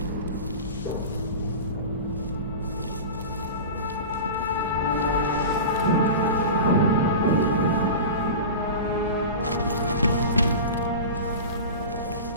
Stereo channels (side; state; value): both; inverted; correlation -0.30